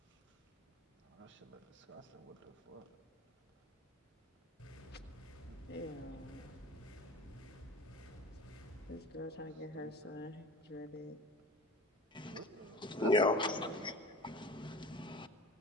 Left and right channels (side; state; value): both; normal; correlation 0.38